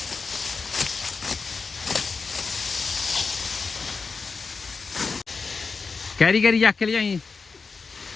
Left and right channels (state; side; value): quieter; right; 4.7 dB